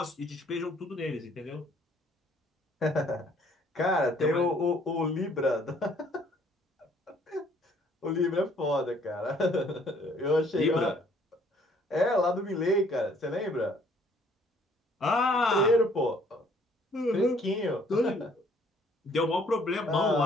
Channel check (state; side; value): normal; both; correlation 0.61